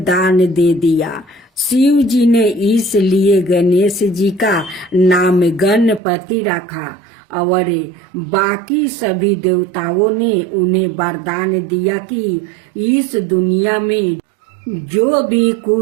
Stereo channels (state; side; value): drops out; left; at 6.0 s